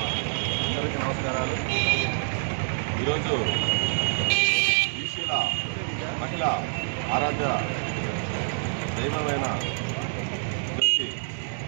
నమస్కారాలు. ఈరోజు బీసీల మహిళ ఆరాధ్య దైవమైన జ్యోతి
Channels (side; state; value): left; silent; 60 dB below the other